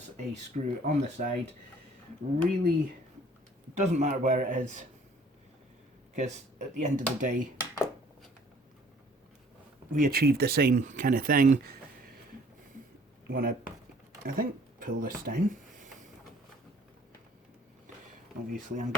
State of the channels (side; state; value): both; normal; correlation 0.56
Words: a screw on the side. Really doesn't matter where it is, because at the end of the day, we achieve the same kind of thing. Want to, I think, pull this down. Obviously, I'm